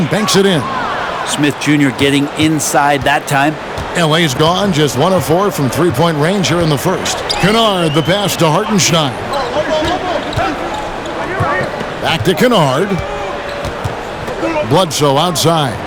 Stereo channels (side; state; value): both; identical; correlation 1.00